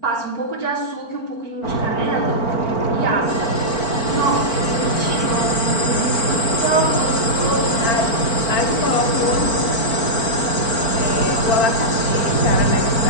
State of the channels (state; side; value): late; right; 4.4 ms